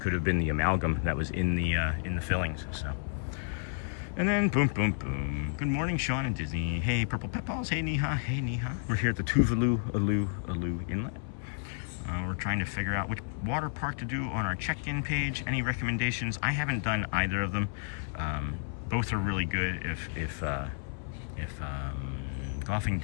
have been the amalgam that was in the fillings. So, and then boom, boom, boom. Good morning, Sean and Disney. Hey, Purple Pepballs. Hey, Niha. Hey, Niha. We're here at the Tuvalu Alu Inlet. We're trying to figure out which water park to do on our check-in page. Any recommendations? I haven't done either of them. Both are really good. If Golfing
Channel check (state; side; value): silent; right; 57 dB below the other